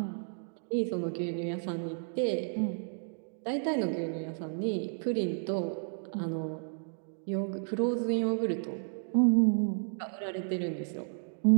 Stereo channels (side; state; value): left; silent; digital silence